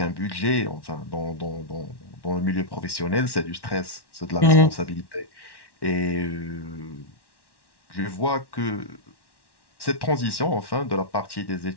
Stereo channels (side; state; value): right; late; 1.1 ms